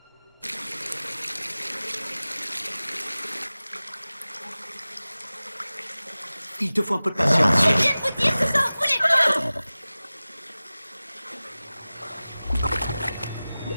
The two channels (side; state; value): both; inverted; correlation -0.97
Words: Il te faut un peu de patience, chérie. Je viens de vous dire que ça en voulait pas!